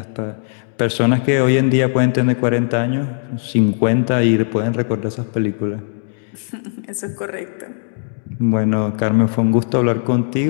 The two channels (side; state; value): right; silent; digital silence